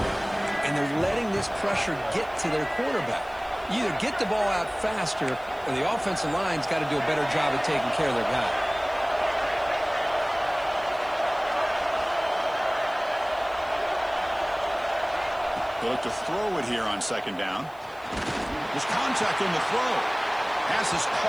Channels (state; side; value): noise; right; hiss, 28 dB below the sound